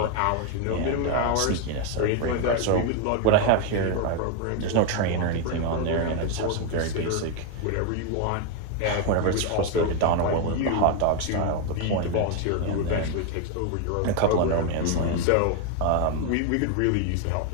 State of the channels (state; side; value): different; both; correlation 0.01